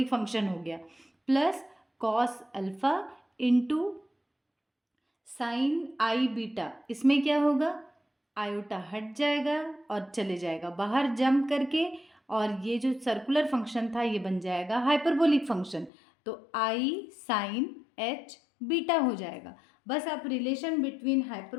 function हो गया, plus cos alpha into sine I beta. इसमें क्या होगा, आयोटा हट जाएगा और चले जाएगा बाहर जंप करके, और ये जो सर्कुलर फंक्शन था ये बन जाएगा हाइपरबोलिक फंक्शन। तो आई साइन एच बीटा हो जाएगा। बस आप relation between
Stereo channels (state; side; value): drops out; right; at 15.9 s